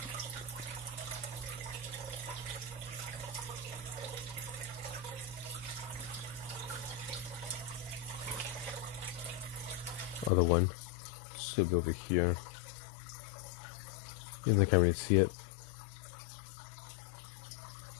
Other one should be over here. I can't really see it.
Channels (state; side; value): drops out; right; at 10.3 s